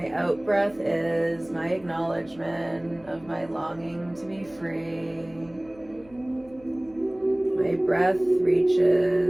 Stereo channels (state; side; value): noise; left; hum, 25 dB below the sound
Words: out-breath is my acknowledgement of my longing to be free. My breath